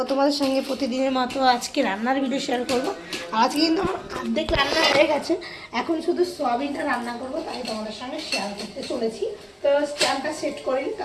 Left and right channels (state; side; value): identical; both; correlation 1.00